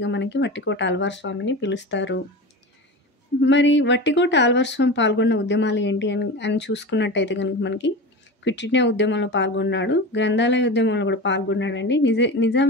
మనకి వట్టికోట అల్వార్ స్వామిని పిలుస్తారు. మరి వట్టికోట అల్వార్ స్వామి పాల్గొన్న ఉద్యమాలు ఏంటి అని చూసుకున్నట్టయితే కనుక మనకి క్విట్ ఇండియా ఉద్యమంలో పాల్గొన్నాడు, గ్రంథాలయ ఉద్యమంలో కూడా పాల్గొన్నాడండి, నిజాం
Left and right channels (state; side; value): normal; both; correlation 0.28